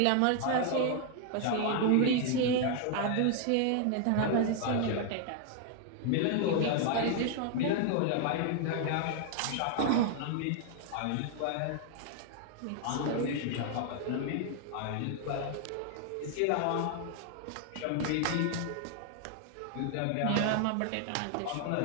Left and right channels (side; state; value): both; different; correlation 0.00